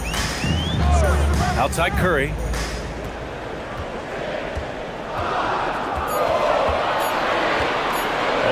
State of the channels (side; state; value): both; identical; correlation 1.00